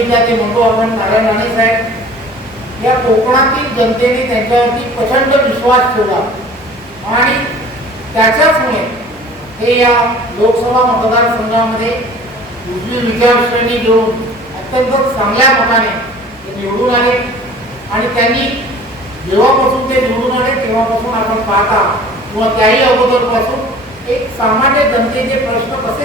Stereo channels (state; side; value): normal; both; correlation 0.46